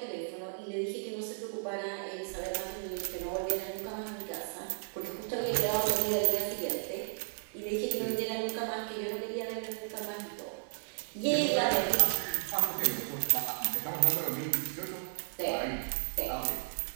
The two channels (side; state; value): left; silent; digital silence